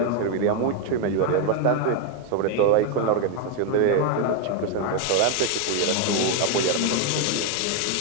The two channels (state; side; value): different; both; correlation 0.01